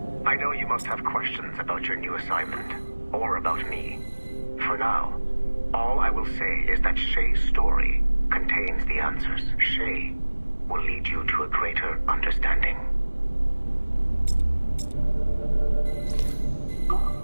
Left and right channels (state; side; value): inverted; both; correlation -1.00